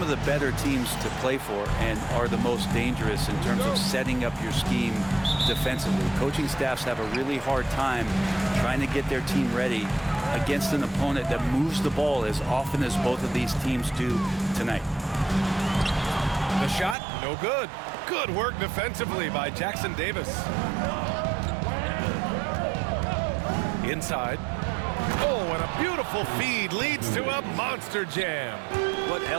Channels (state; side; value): drops out; left; at 16.9 s